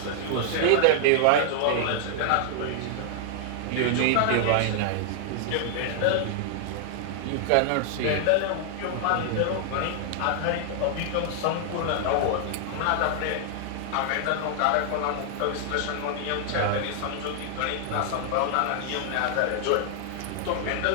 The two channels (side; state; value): both; different; correlation 0.00